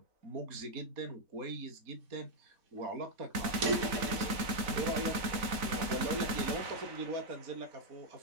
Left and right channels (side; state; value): left; late; 3.9 ms